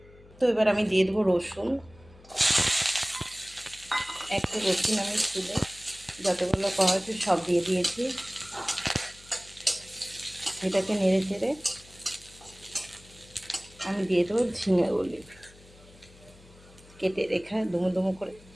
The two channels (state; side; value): noise; left; hum, 24 dB below the sound